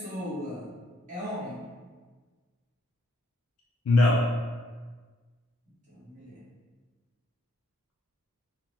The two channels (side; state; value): both; normal; correlation 0.72